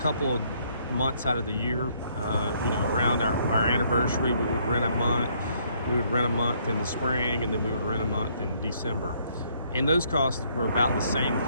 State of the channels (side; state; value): both; inverted; correlation -0.67